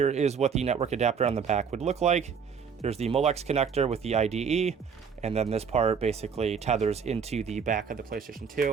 is what the network adapter on the back would look like. There's the Molex connector with the IDE, and then this part basically tethers into the back of the PlayStation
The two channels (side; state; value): left; quieter; 6.5 dB